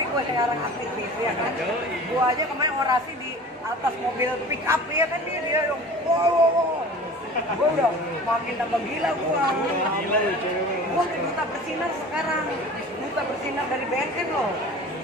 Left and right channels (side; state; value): both; normal; correlation 0.40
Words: gue sekarang aktivis ya kan, gue aja kemarin orasi di atas mobil pick up ya kan, dia dong, wow. Gue udah makin tambah gila gue duta bersinar sekarang, duta bersinar dari BNN loh.